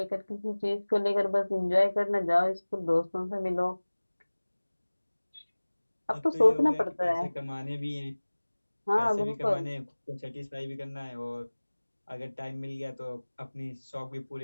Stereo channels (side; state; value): both; inverted; correlation -1.00